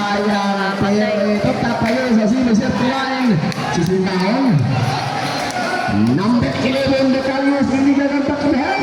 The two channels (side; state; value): both; identical; correlation 1.00